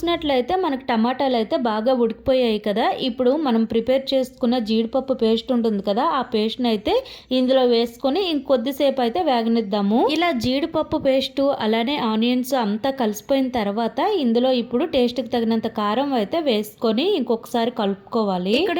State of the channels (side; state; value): both; identical; correlation 1.00